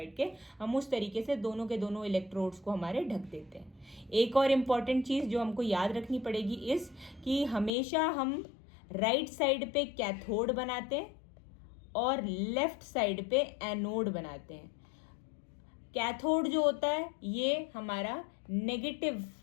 के। हम उस तरीके से दोनों के दोनों इलेक्ट्रोड्स को हमारे ढक देते हैं। एक और इम्पॉर्टेंट चीज़ जो हमको याद रखनी पड़ेगी इस कि हमेशा हम राइट साइड पे कैथोड बनाते हैं और लेफ्ट साइड पे एनोड बनाते हैं। कैथोड जो होता है ये हमारा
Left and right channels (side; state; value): right; drops out; at 7.7 s